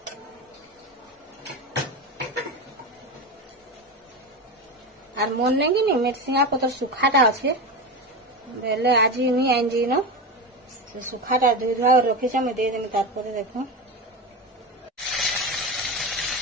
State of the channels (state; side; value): normal; both; correlation 0.21